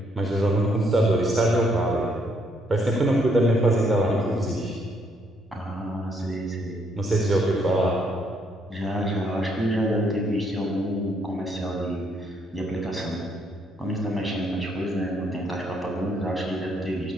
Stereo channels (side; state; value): both; normal; correlation 0.71